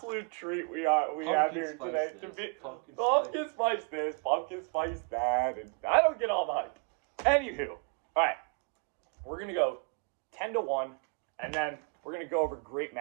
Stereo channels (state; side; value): quieter; left; 34.9 dB